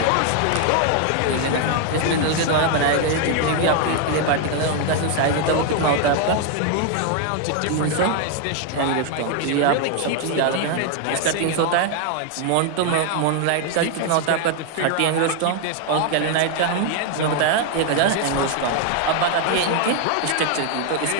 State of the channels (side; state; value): both; different; correlation 0.00